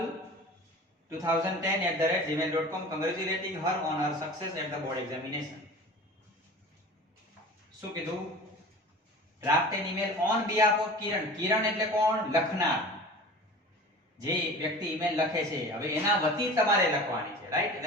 congratulating her on her success at the board examination. શું કીધું? draft an email on behalf of Kiran. કિરણ એટલે કોણ? લખનાર. જે વ્યક્તિ ઈમેલ લખે છે હવે એના વતી તમારે લખવાની છે, રાઈટ?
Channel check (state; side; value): normal; both; correlation 0.38